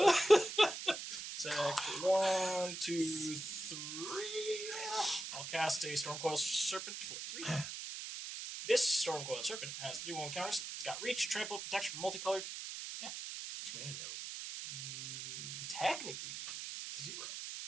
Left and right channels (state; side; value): noise; right; hiss, 7 dB below the sound